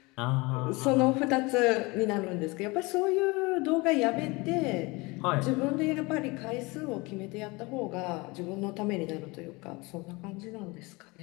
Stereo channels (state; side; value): quieter; right; 24.9 dB